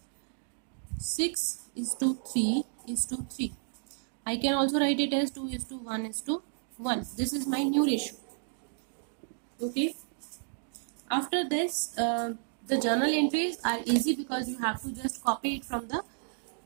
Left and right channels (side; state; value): left; silent; digital silence